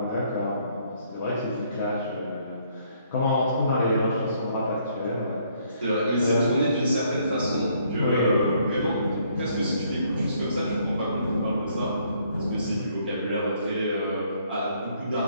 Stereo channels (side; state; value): both; inverted; correlation -0.67